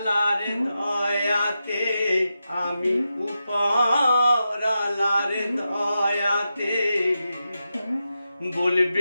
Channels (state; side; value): inverted; both; correlation -0.89